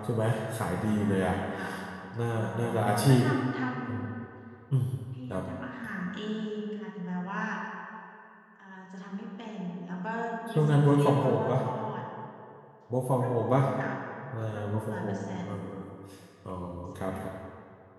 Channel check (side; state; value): both; identical; correlation 1.00